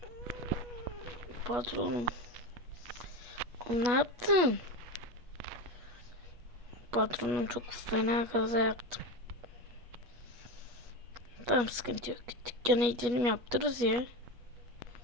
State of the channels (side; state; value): left; late; 8.3 ms